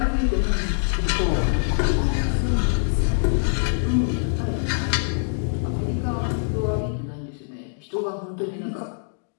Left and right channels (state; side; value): silent; right; digital silence